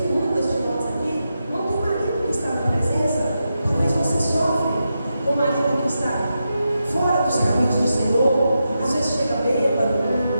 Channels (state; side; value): inverted; both; correlation -0.88